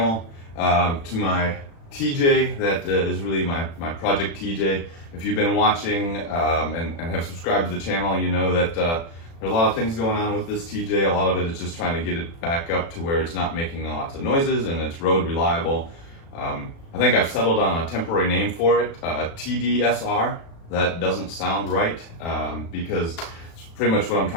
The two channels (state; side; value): late; right; 36 ms